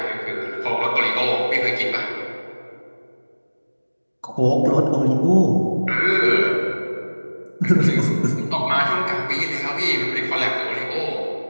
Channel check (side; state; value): both; inverted; correlation -1.00